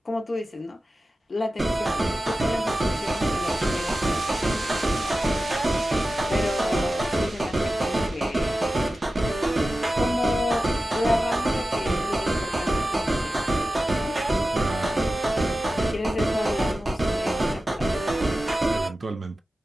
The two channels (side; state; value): both; normal; correlation 0.94